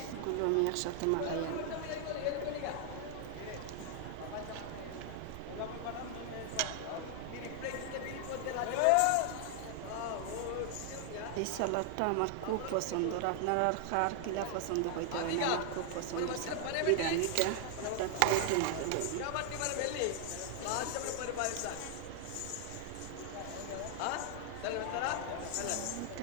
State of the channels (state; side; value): different; both; correlation 0.00